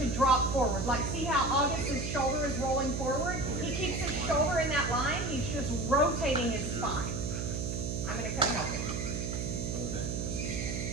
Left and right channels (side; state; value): right; noise; hum, 3 dB below the sound